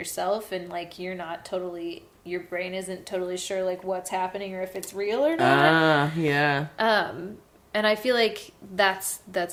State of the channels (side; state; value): both; identical; correlation 1.00